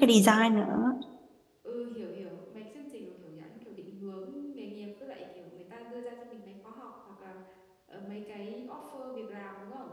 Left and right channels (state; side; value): identical; both; correlation 1.00